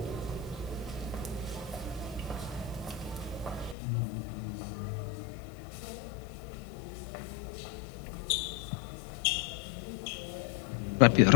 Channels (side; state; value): right; drops out; at 3.8 s